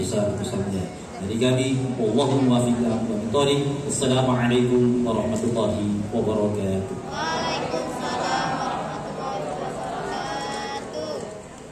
Dari kami, Allahumma fiqh. Assalamualaikum warahmatullahi wabarakatuh.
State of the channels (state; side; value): identical; both; correlation 1.00